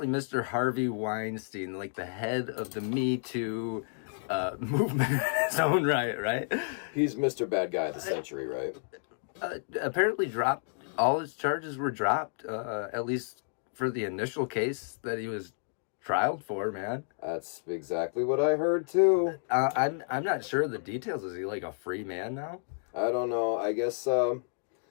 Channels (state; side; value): silent; right; digital silence